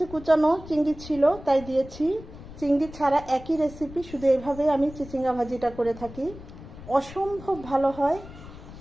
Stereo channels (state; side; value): noise; left; rumble, 16 dB below the sound